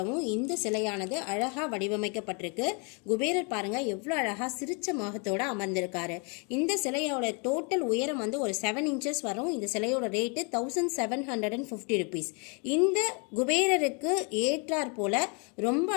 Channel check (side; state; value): right; quieter; 34.7 dB